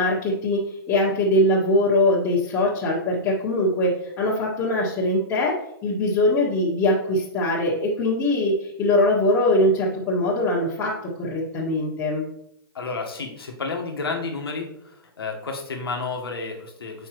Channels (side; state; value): both; normal; correlation -0.09